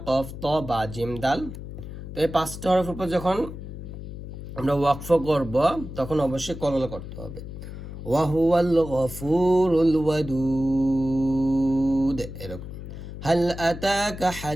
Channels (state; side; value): noise; left; hum, 10 dB below the sound